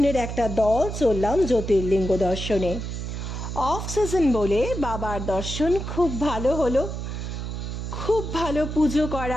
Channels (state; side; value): noise; right; hum, 5 dB below the sound